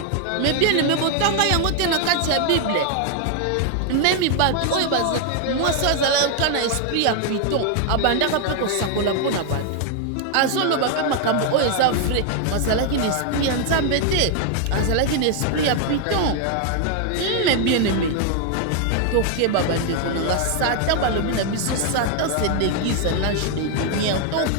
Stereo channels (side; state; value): both; different; correlation 0.00